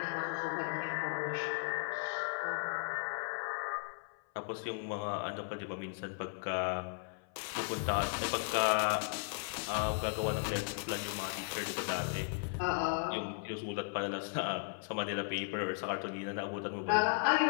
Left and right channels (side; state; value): right; silent; 54 dB below the other